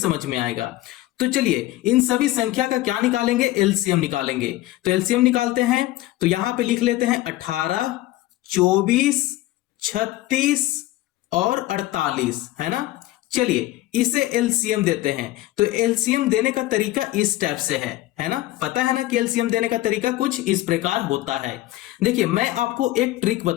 में आएगा। तो चलिए इन सभी संख्या का क्या निकालेंगे? एलसीएम निकालेंगे। तो एलसीएम निकालते हैं, तो यहां पे लिख लेते हैं 18, 24, 36 और 48, है ना। चलिए इसे एलसीएम देते हैं। तो एलसीएम देने का तरीका इस टाइप से है ना। पता है ना कि एलसीएम देने का तरीका कुछ इस प्रकार होता है। देखिए मैं आपको एक ट्रिक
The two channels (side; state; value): right; quieter; 16.4 dB